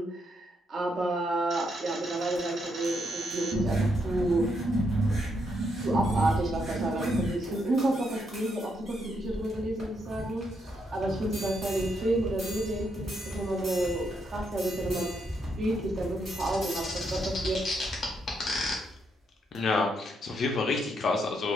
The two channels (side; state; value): both; normal; correlation 0.78